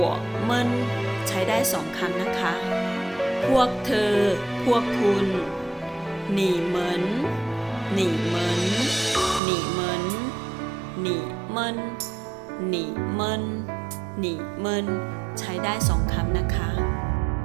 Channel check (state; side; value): drops out; left; at 9.4 s